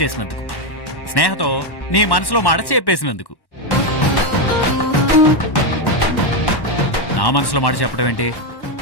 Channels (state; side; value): late; right; 1.1 ms